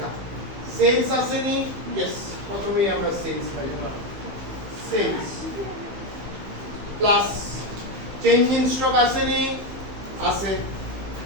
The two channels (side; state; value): left; late; 15 ms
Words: সেলস আসেনি, यस, প্রথমেই আমরা সেলস পাই, sales plus change in stock আসেনি, আছে,